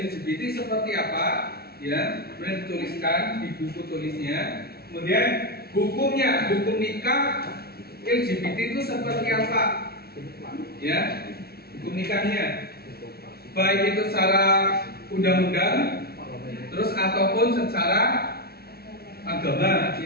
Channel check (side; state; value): right; late; 0.45 ms